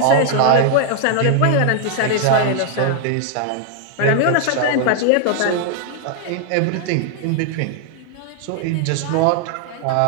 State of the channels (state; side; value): different; both; correlation 0.00